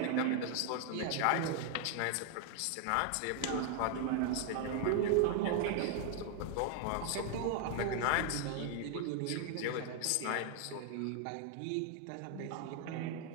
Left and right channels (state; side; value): different; both; correlation 0.00